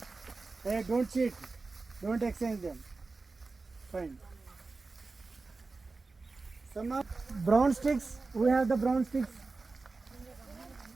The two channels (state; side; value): quieter; left; 3.8 dB